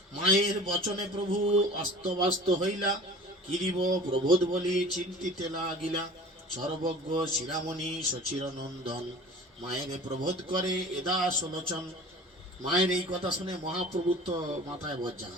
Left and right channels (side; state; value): both; normal; correlation 0.41